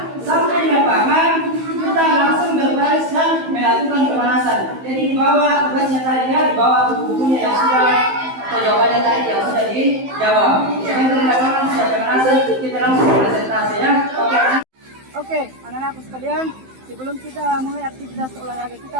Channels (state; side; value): late; left; 15 ms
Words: Sampai di lapangan, kita langsung berbaris dan melakukan pemanasan. Jadi di bawah tugasnya tadi ya, di bawah buku-bukunya yang sudah atau jawabannya tadi yang sudah dijawab. Jangan di lapangan sudah pemanasan, kita langsung presentasi ya. Oke, anak-anakku sekalian, sebelum kita mulai aktivitas olahraga